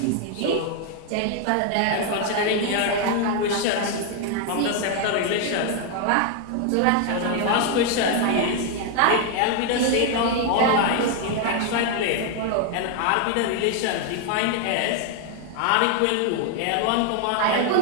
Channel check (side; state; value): both; different; correlation 0.00